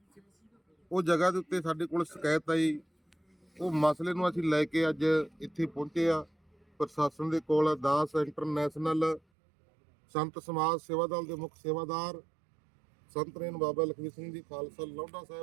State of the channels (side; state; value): left; drops out; at 9.2 s